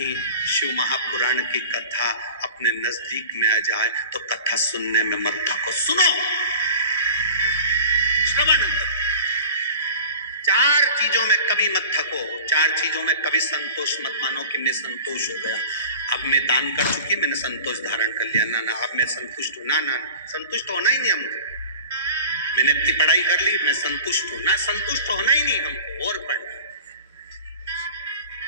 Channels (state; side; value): inverted; both; correlation -0.40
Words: शिव महापुराण की कथा अपने नजदीक में आ जाए तो कथा सुनने में मत थको, सुनो, श्रवण करो। 4 चीजों में कभी मत थको। 4 चीजों में कभी संतोष मत मानो कि मैं संतोष हो गया, अब मैं दान कर चुकी, मैंने संतोष धारण कर लिया। ना ना, अब मैं संतुष्ट हूं। ना ना, संतुष्ट होना ही नहीं हमको। मैंने इतनी पढ़ाई कर ली, मैं संतुष्ट हूं ना, संतुष्ट होना ही नहीं हमको, और पढ़ना,